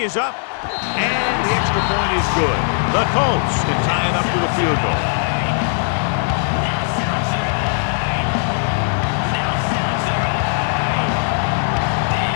up, and the extra point is good. The Colts can tie it up with a field goal.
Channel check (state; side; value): silent; right; 57 dB below the other